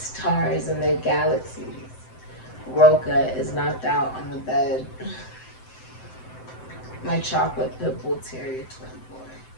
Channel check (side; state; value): right; late; 7.8 ms